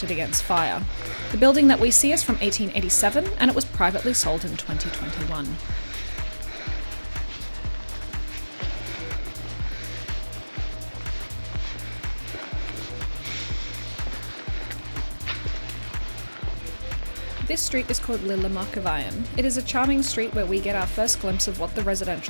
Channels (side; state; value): both; inverted; correlation -1.00